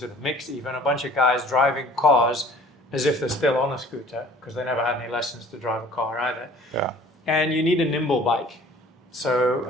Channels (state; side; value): normal; both; correlation 0.50